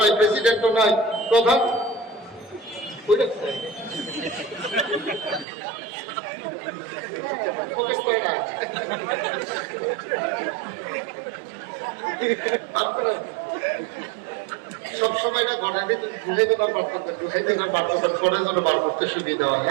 প্রেসিডেন্টও নাই, প্রধান সবসময় না ঘরের ভিতরে ঢুকাইতে না বার করবেন, ঢুকাইতে না বার করবেন, ঘরের জন্য বার করতে সুবিধা হয়।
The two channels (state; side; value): drops out; left; at 5.5 s